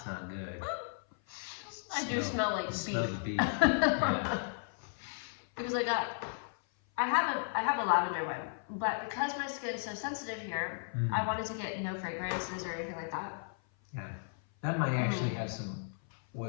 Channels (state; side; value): silent; right; 54 dB below the other